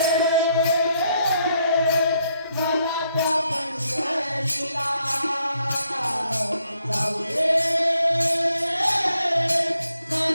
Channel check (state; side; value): inverted; both; correlation -0.74